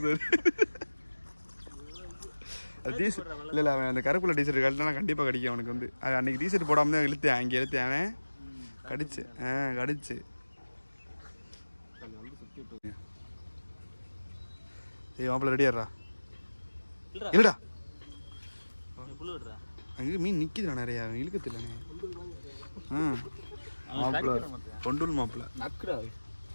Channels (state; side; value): inverted; both; correlation -1.00